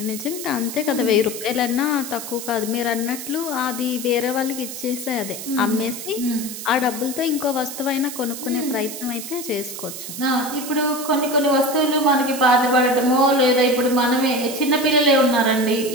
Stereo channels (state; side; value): noise; right; hiss, 9 dB below the sound